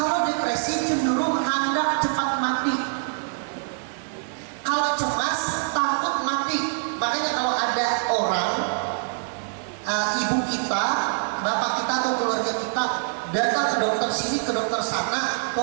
depresi cenderung hendak cepat mati. Kalau cemas, takut mati. Makanya kalau ada orang, ibu kita, bapak kita atau keluarga kita datang ke dokter sini, ke dokter sana,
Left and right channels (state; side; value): silent; left; 59 dB below the other